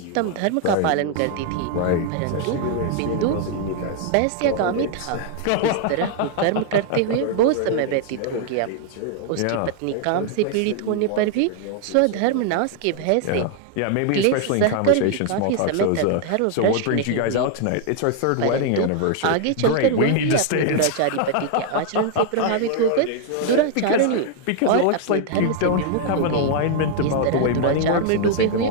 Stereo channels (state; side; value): different; both; correlation 0.00